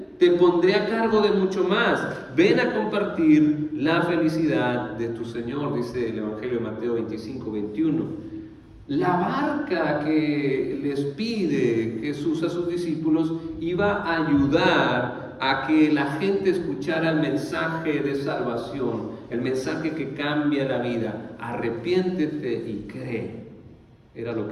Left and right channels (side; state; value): both; identical; correlation 1.00